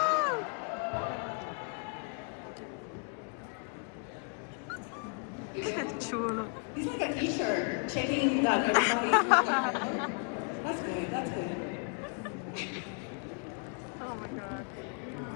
yeah. Chulo. He's like a t-shirt, checking that everybody. That's good, that's good.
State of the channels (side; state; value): right; quieter; 39.0 dB